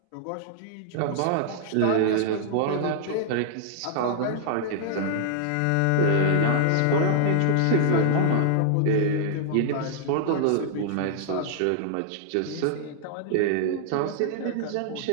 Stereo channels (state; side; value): different; both; correlation -0.01